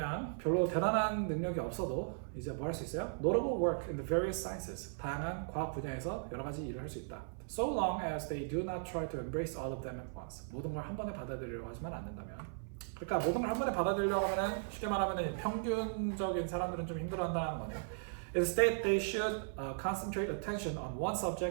별로 대단한 능력이 없어도 이제 뭐 할 수 있어요? Notable work in the various sciences. 다양한 과학 분야에서 여러 가지 일을 할 수 있다. So long as they do not try to embrace all of them at once. 모든 걸 한 번에 받아들이려고 하지만 않는다면. 그러니까 모든 걸 한 번에 받아들이려고 하면은 쉽게 말하면은 평균적인 사람들은 좀 힘들어한다는 거네요. Instead, they should concentrate attention on one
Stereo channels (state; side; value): silent; left; 53 dB below the other